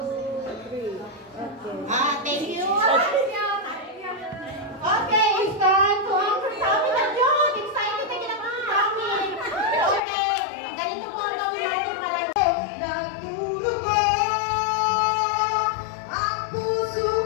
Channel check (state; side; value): drops out; right; at 10.0 s